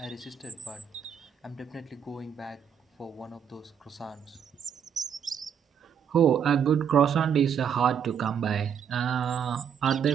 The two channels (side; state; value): left; quieter; 7.9 dB